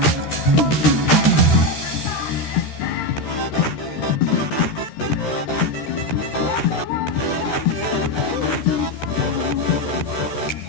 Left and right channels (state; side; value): late; right; 13 ms